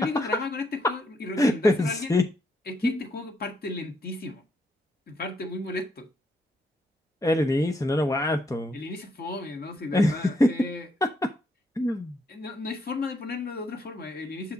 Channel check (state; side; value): normal; both; correlation 0.76